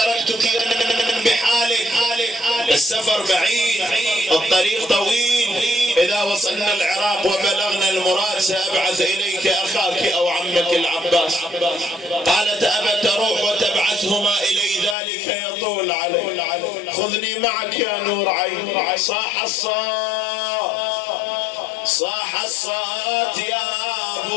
بحالك، السفر بعيد، الطريق طويل، اذا وصلنا العراق وبلغنا المراد سابعث اليك اخاك او عمك العباس. قالت ابى تروح وتبعثهما الي ذلك يطول علي، خذني معك يا نور عيني. صاح الصوت، صاح الصوت يا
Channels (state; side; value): drops out; right; at 15.0 s